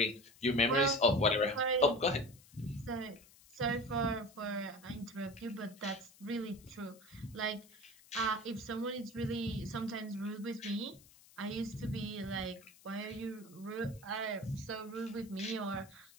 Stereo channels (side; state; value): left; noise; hiss, 24 dB below the sound